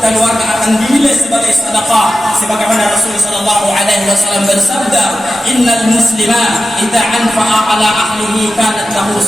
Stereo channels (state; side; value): normal; both; correlation 0.92